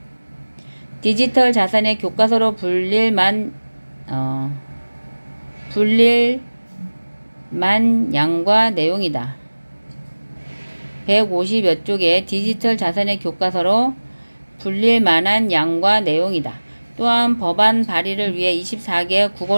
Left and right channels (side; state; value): both; inverted; correlation -1.00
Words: 디지털 자산의 교과서로 불릴만 양과 내용이다. 150여 쪽의 디지털 자산의 교과서로 불릴 만한 양과 내용이다. 또한 법안 발의를 위해 24개